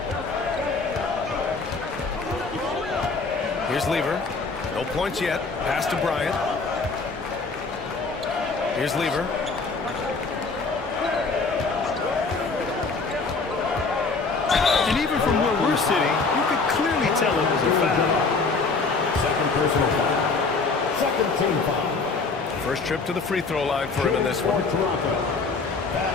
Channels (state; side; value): quieter; right; 4.2 dB